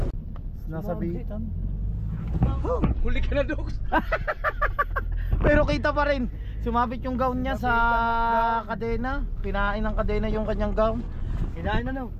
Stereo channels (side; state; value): both; identical; correlation 1.00